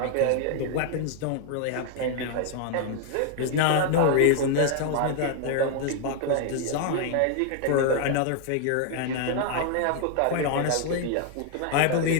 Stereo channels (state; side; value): different; both; correlation 0.00